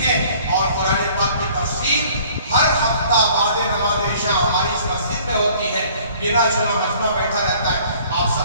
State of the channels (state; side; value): inverted; both; correlation -0.54